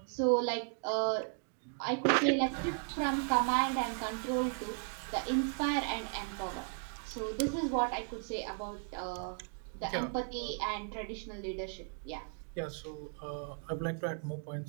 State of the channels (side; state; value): left; silent; 54 dB below the other